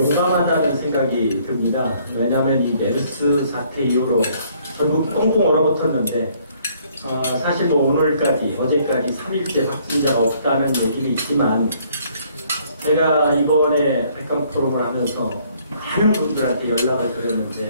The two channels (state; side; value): inverted; both; correlation -0.63